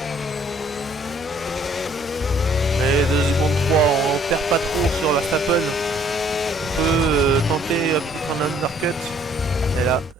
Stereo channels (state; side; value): normal; both; correlation 0.61